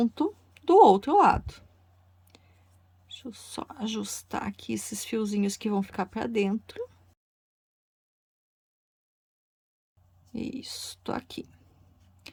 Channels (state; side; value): identical; both; correlation 1.00